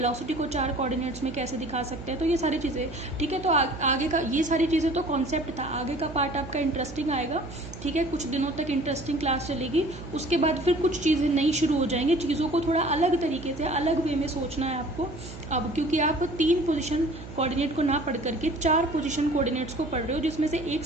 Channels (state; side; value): noise; right; hum, 13 dB below the sound